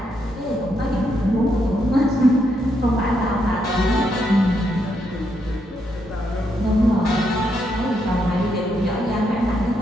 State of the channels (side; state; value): both; normal; correlation 0.78